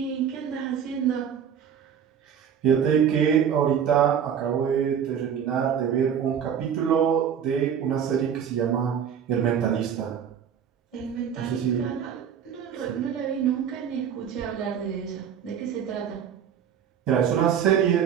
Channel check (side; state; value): left; quieter; 8.3 dB